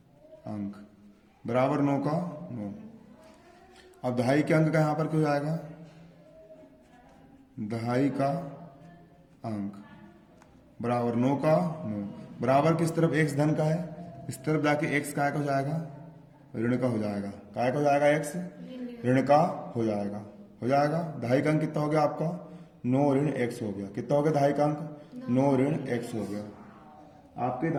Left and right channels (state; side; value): identical; both; correlation 1.00